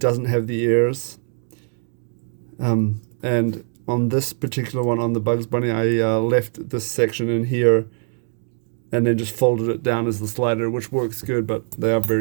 have the ears. And on this particular one, on the Bugs Bunny, I left this section in here and then just folded it down as the slider, which works good, but they are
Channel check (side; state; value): left; silent; 55 dB below the other